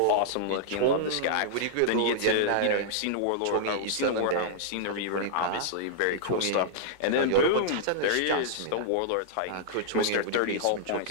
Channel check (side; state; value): both; different; correlation -0.02